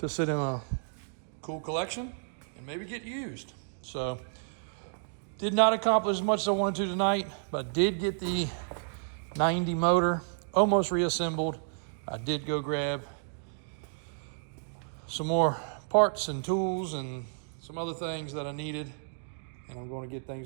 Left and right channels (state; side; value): silent; left; digital silence